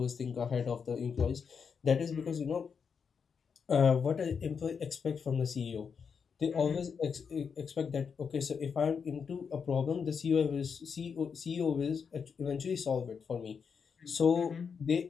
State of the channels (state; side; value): quieter; right; 6.2 dB